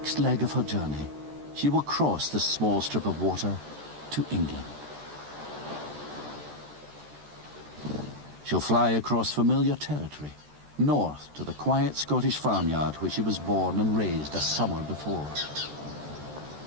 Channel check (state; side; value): late; left; 13 ms